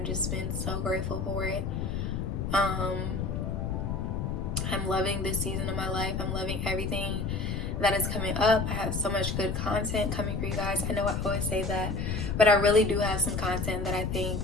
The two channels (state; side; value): noise; left; rumble, 1 dB below the sound